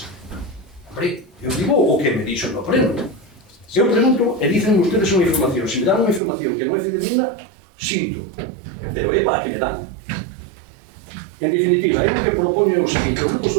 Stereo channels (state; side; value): drops out; left; at 6.2 s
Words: Hombre, eu digo o que me dixo no pleno. Eu pregunto e dicen ustedes unha información. Se me dan unha información que non é fidedigna, sinto. Pero é para que me dan. En definitiva, é o que propone o seguinte. O Grupo